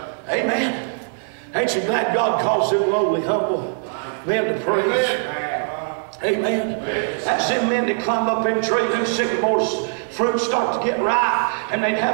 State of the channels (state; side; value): silent; left; digital silence